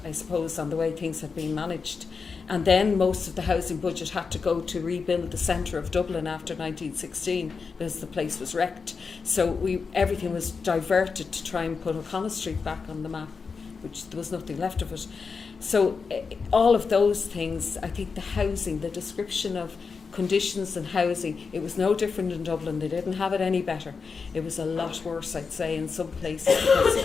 I suppose, on the way things had been managed. And then most of the housing budget had to go to rebuild the centre of Dublin after 1916 because the place was wrecked. So everything was diverted to try and put O'Connell Street back on the map, which there was nothing left of it. So all of those things, I think the housing, the description of conditions and housing, it was no different in Dublin. They didn't have it any better. It was a lot worse, I'd say, in some places,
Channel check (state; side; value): quieter; right; 5.1 dB